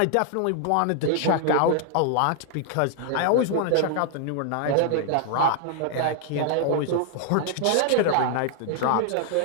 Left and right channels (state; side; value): different; both; correlation 0.00